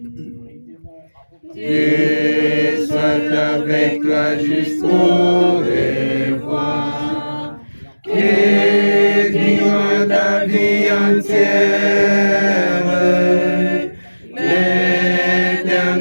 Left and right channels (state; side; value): inverted; both; correlation -1.00